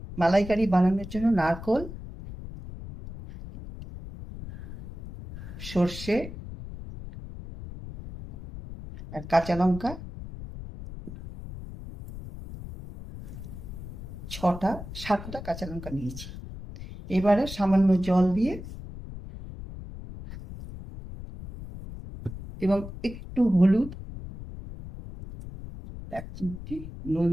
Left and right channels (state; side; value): noise; left; rumble, 12 dB below the sound